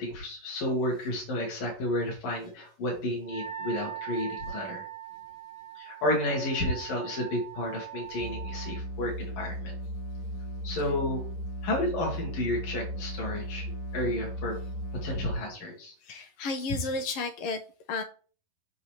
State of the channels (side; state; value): right; late; 11 ms